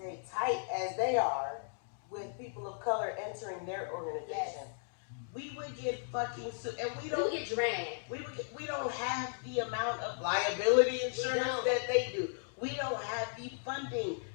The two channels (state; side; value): silent; right; digital silence